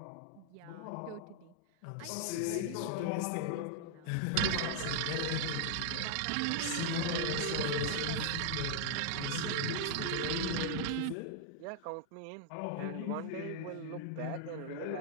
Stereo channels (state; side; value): different; both; correlation -0.01